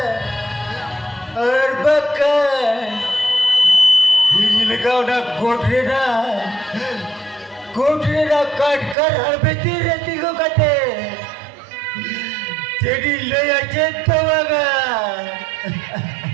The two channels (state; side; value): drops out; left; at 9.0 s